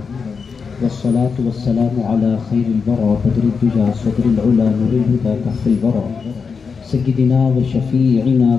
والصلاة والسلام على خير البرى بدر الدجى صدر العلا نور الهدى كهف الورى، سيدنا وشفيعنا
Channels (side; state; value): right; quieter; 5.5 dB